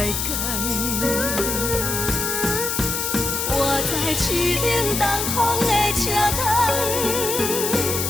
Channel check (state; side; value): noise; left; hiss, 1 dB below the sound